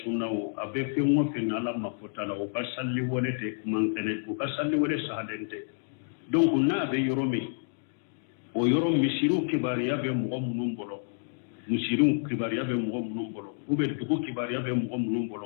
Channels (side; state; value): right; silent; digital silence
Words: sunnaw a bɛ fɛn o fɛn na Ala ma fɔta la o ka sali wele tɛ man kɛnɛ o ka sali wele sahalen tɛ donc n'a bɛ yɔrɔ min o yɔrɔ misiriw kibariya bɛ mɔgɔ minnu bolo misiriw kibariya bɛ mɔgɔ minnu bolo ou bien dugu kibariya bɛ mɔgɔ minnu